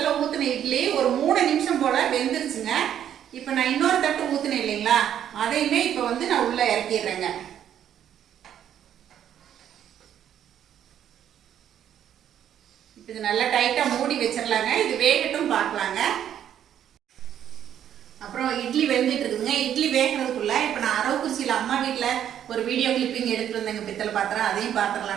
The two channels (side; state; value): left; quieter; 10.1 dB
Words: ஊற்றின இட்லி ஒரு 3 நிமிஷம் போல் வெந்துருச்சுங்க. இப்போ நான் இன்னொரு தட்டு ஊற்றினேன் இல்லைங்களா, அதையுமே இப்போ வந்து நான் உள்ளே இறக்கிடுறேங்க. இது நல்லா டைட்டாக மூடி வச்சிடலாங்க. இது வேகட்டும் பார்க்கலாங்க. அப்புறம் இட்லி வெந்துட்டு இருக்குதுங்க. இட்லி வேகிறதுக்குள்ள இப்போ நான் அரவக்குறிச்சியில் அம்மா வீட்டில் ஒரு வீடியோ கிளிப்பிங் எடுத்துகிட்டு வந்தேங்க பித்தளை பாத்திரம். அதையும்